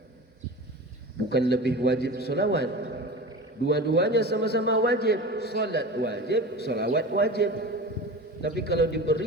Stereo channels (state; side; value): normal; both; correlation 0.32